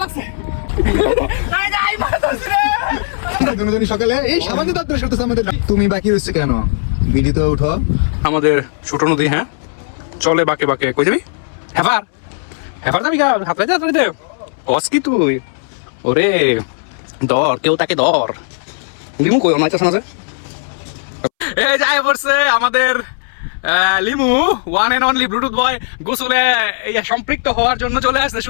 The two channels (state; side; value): silent; right; 67 dB below the other